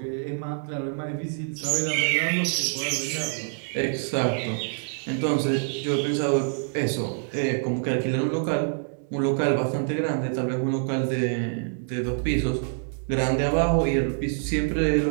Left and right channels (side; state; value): left; silent; digital silence